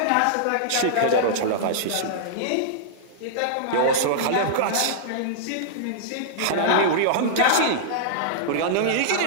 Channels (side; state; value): both; different; correlation -0.02